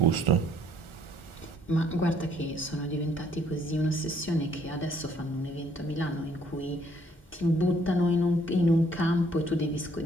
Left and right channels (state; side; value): normal; both; correlation 0.65